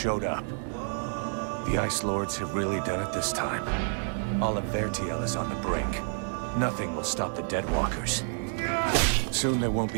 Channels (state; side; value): silent; left; 59 dB below the other